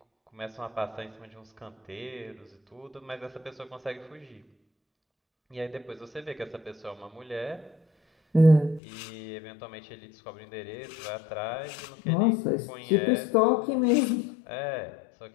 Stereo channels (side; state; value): right; drops out; at 8.8 s